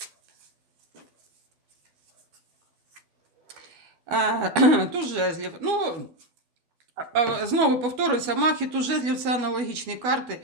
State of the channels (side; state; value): left; late; 12 ms